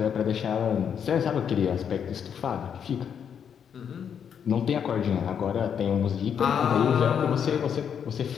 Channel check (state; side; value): quieter; right; 7.9 dB